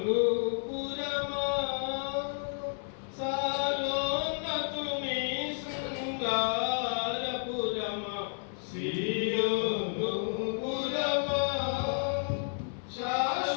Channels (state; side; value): silent; right; 57 dB below the other